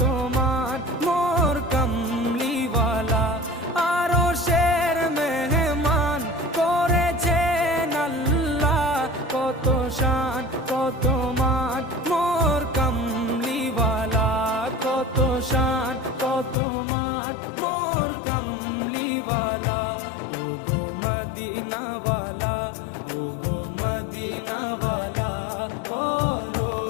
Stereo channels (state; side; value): drops out; right; at 16.6 s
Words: মান মোর কামলিওয়ালা। আরশের মেহমান করেছেন আল্লাহ, কত শান কত মান মোর কামলিওয়ালা, কত শান কত মান মোর কামলিওয়ালা। ও গো মদিনাওয়ালা, ও গো মদিনাওয়ালা, করো